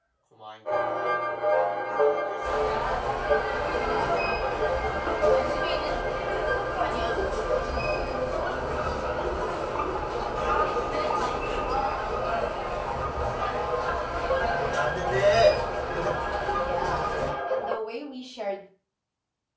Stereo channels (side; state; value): both; identical; correlation 1.00